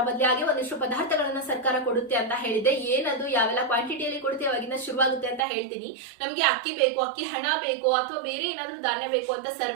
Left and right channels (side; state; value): left; drops out; at 5.5 s